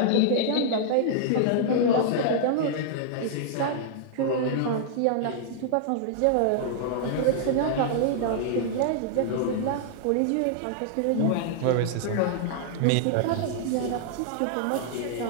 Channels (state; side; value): different; both; correlation -0.01